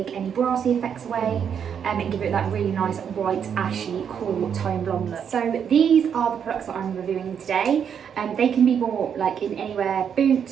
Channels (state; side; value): quieter; left; 7.8 dB